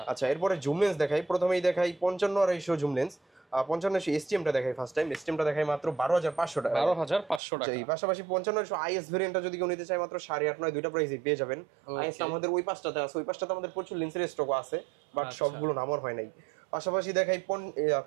আচ্ছা, এরপরে জুম লেন্স দেখাই, প্রথমেই দেখাই 55 জুম লেন্স, 55 STMটা দেখাই ফার্স্ট টাইম, STMটা দেখাই মাত্র 12500 টাকা, 12500 টাকা। এই পাশাপাশি 55 IS ভেরিয়েন্টটা যদি কেউ নিতে চায় মাত্র 8.5, 9 দুইটা প্রাইসই পেয়ে যাবেন। IS আমাদের ওই পাঁচটাতে আছে, ওই পাঁচটাতে আমাদের প্রচুর লেন্সের স্টক আছে, বাট সবগুলো নামার হয় নাই। পাশাপাশি দেখাই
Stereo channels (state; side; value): drops out; left; at 7.4 s